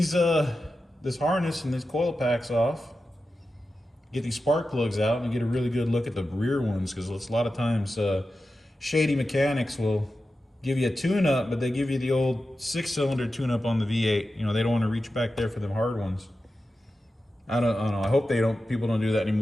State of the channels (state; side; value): normal; both; correlation 0.92